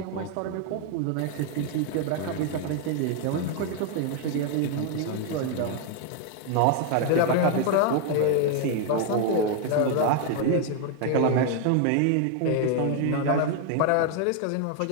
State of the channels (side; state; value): both; different; correlation 0.01